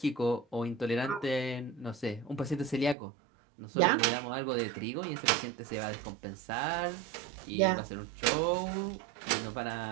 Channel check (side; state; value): left; drops out; at 3.0 s